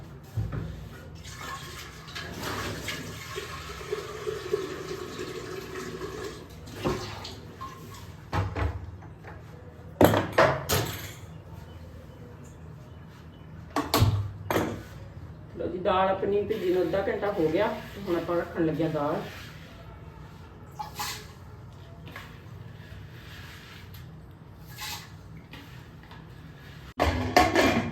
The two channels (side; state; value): both; identical; correlation 1.00